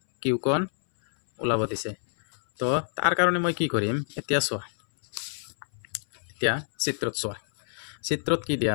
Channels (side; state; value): right; silent; 59 dB below the other